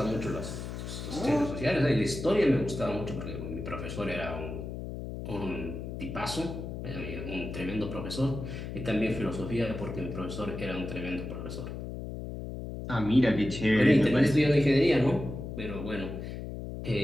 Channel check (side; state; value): left; noise; hum, 7 dB below the sound